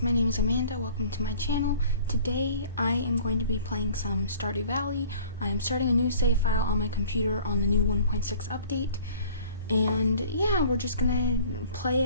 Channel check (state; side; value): inverted; both; correlation -0.50